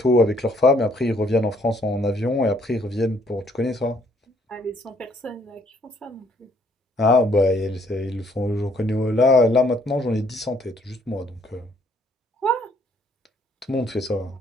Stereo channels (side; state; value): both; normal; correlation 0.65